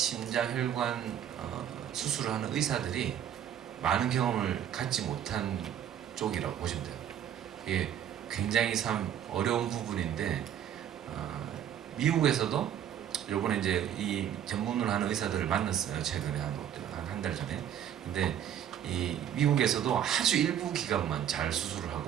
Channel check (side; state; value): left; quieter; 9.9 dB